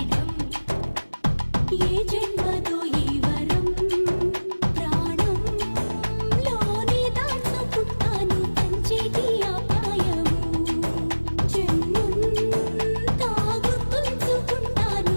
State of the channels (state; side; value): inverted; both; correlation -1.00